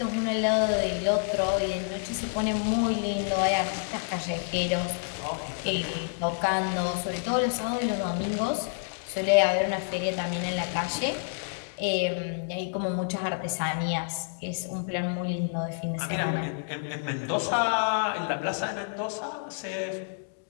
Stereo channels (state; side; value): silent; right; digital silence